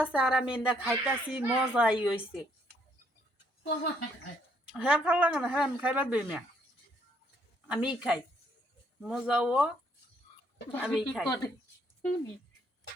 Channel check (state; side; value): normal; both; correlation 0.69